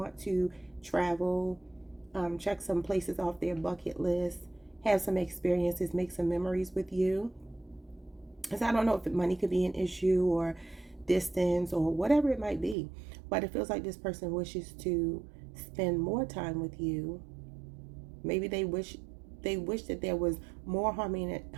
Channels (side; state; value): left; drops out; at 12.8 s